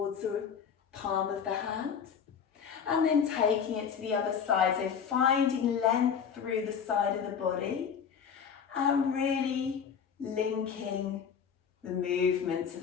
the palm of the hand. And then taking it to the other side, so finding length through the side of the body and really linking the movement to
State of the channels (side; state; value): right; quieter; 7.2 dB